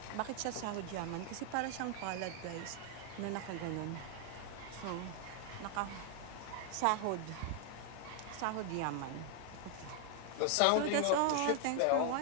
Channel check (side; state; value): both; different; correlation 0.00